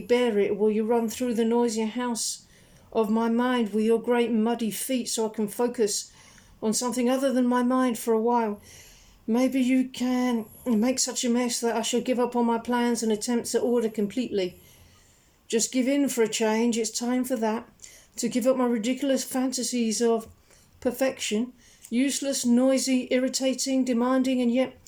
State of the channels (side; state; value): both; identical; correlation 1.00